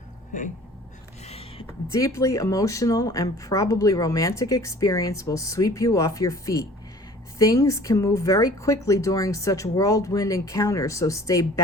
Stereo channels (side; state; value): both; normal; correlation 0.48